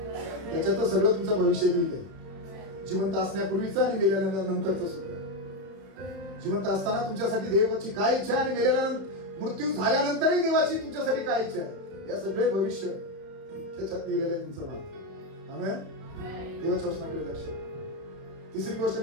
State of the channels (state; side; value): late; left; 31 ms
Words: त्याच्यात सगळं तुमचं भविष्य लिहिलंय. जिवंत असण्यापूर्वीचं आणि मेल्यानंतरचं सुद्धा. जिवंत असताना तुमच्यासाठी देवाची काय इच्छा आणि मेल्यानंतर, मृत्यू झाल्यानंतरही देवाची तुमच्यासाठी काय इच्छा आहे या सगळे भविष्य त्याच्यात लिहिलेलं आहे तुमचं नाव. आमेन. देवाच्या वचनाकडे लक्ष. तिसरी गोष्ट